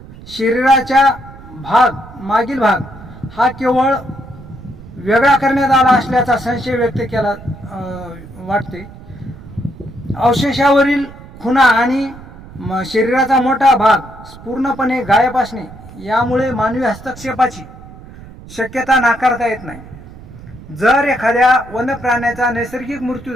शरीराचा मागील भाग हा केवळ वेगळा करण्यात आला असल्याचा संशय व्यक्त केला वाटते. अवशेषावरील खुणा आणि शरीराचा मोठा भाग पूर्णपणे गायब असणे यामुळे मानवी हस्तक्षेपाची शक्यता नाकारता येत नाही. जर एखाद्या वन्यप्राण्याचा नैसर्गिक मृत्यू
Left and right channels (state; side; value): noise; right; rumble, 18 dB below the sound